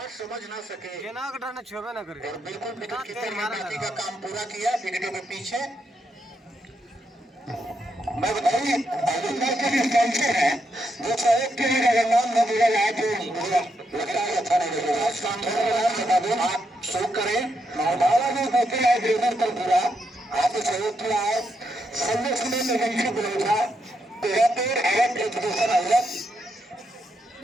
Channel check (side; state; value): both; normal; correlation 0.81